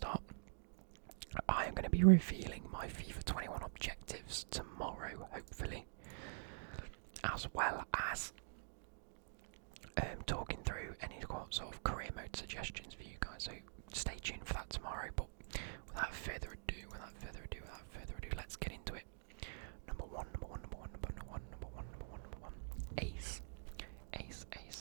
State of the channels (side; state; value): left; silent; digital silence